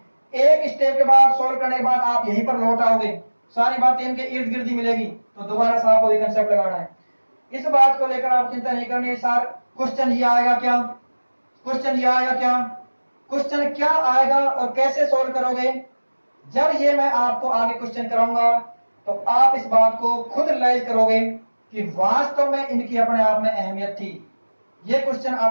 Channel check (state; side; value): inverted; both; correlation -1.00